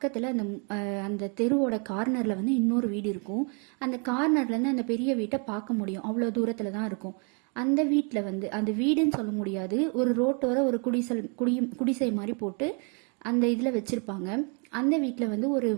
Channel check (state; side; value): quieter; left; 36.7 dB